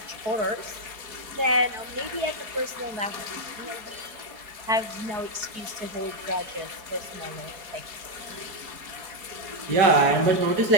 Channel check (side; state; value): left; late; 4.7 ms